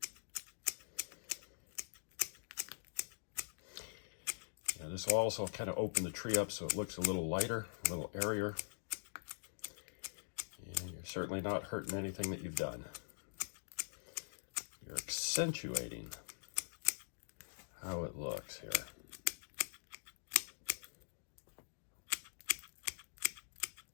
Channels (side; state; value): right; silent; digital silence